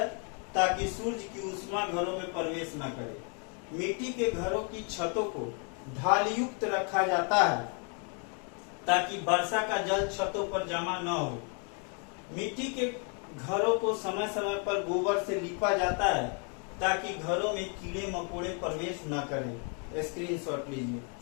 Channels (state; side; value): quieter; right; 38.7 dB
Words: ताकि सूर्य की ऊष्मा घरों में प्रवेश न करे। मिट्टी के घरों की छतों को ढाल युक्त रखा जाता है ताकि वर्षा का जल छतों पर जमा न हो। मिट्टी के घरों को समय समय पर गोबर से लीपा जाता है ताकि घरों में कीड़े मकोड़े प्रवेश न करें। स्क्रीनशॉट लीजिए।